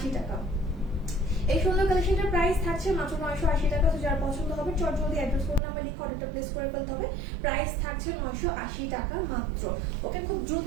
টাকা। এই সুন্দর কালেকশনটার প্রাইস থাকছে মাত্র 980 টাকা। তো যার পছন্দ হবে চট জলদি অ্যাড্রেস ফোন নাম্বার লিখে অর্ডারটা প্লেস করে ফেলতে হবে। প্রাইস থাকছে 980 টাকা মাত্র। ওকে খুব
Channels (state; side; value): drops out; left; at 5.6 s